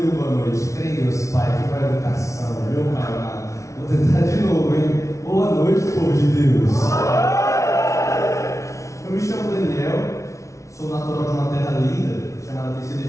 boa noite. Crê em Deus, Pai, que para a educação, meu Pai amado. Vou tentar de novo, hein? Boa noite, povo de Deus. Eu me chamo Daniel, sou natural de uma terra linda, chamada Teixeira de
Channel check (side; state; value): right; late; 0.14 ms